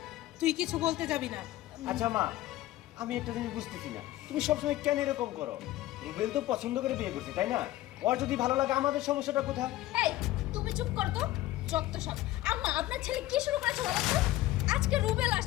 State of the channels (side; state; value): right; quieter; 15.9 dB